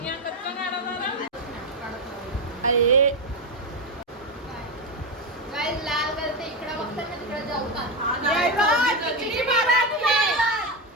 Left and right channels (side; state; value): both; normal; correlation 0.10